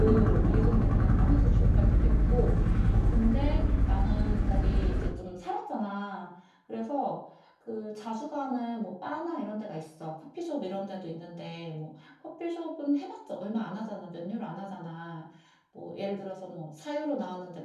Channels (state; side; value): identical; both; correlation 1.00